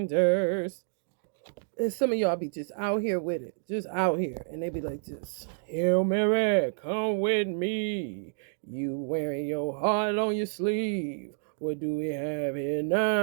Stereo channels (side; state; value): left; silent; digital silence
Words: And some of y'all be just out here with it. Just out here. And they be like this. Hail Mary, come with me. You wearing your heart on your sleeve. What do we have here